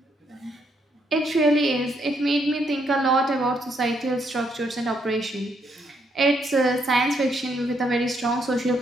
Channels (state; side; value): normal; both; correlation 0.74